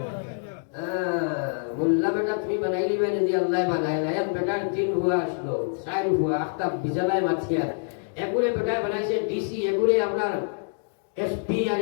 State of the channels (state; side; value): silent; right; digital silence